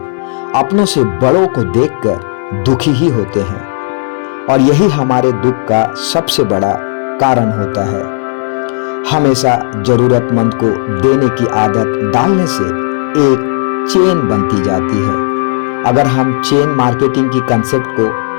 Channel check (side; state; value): right; silent; digital silence